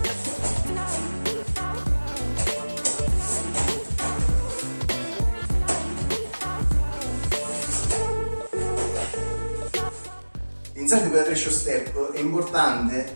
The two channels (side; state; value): both; inverted; correlation -1.00